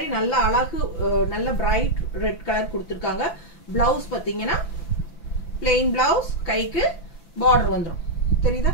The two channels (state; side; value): late; right; 5.9 ms